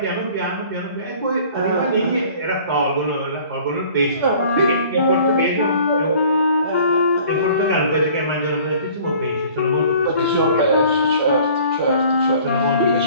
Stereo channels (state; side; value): inverted; both; correlation -0.50